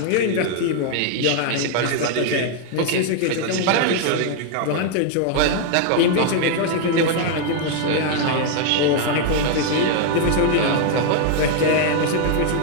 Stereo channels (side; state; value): both; different; correlation 0.00